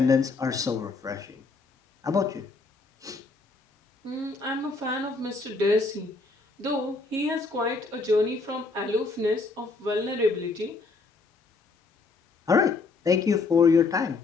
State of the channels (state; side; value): quieter; right; 3.9 dB